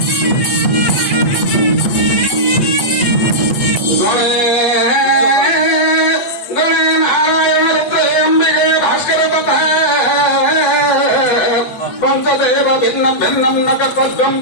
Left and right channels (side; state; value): right; late; 8.1 ms